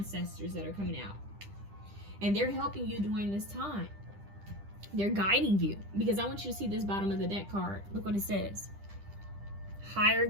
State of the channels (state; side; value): late; left; 10 ms